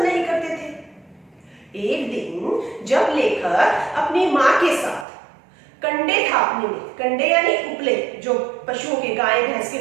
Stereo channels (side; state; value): left; drops out; at 5.1 s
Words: नहीं करते थे। एक दिन जब लेखक अपनी माँ के साथ कंडे थापने में, कंडे यानी उपले जो पशुओं के, गाय भैंस के